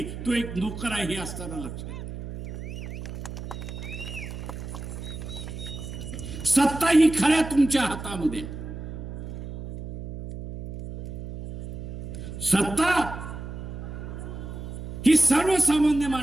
तो एक नोकर आहे हे असताना लक्षात. सत्ता ही खऱ्या तुमच्या हातामध्ये. सत्ता ही सर्वसामान्य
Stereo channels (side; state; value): right; noise; hum, 9 dB below the sound